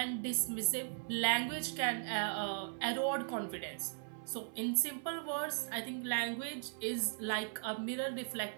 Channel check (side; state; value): left; silent; 52 dB below the other